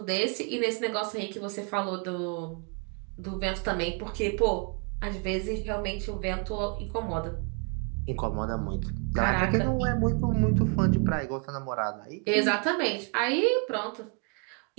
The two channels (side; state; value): left; quieter; 36.6 dB